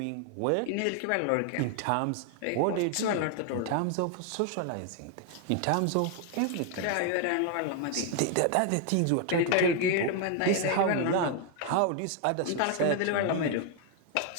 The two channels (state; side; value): different; both; correlation 0.00